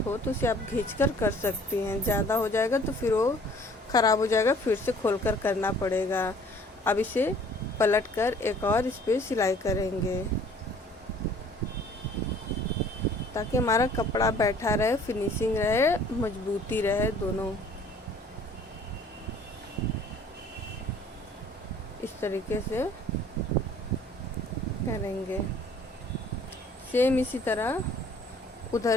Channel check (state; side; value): normal; both; correlation 0.54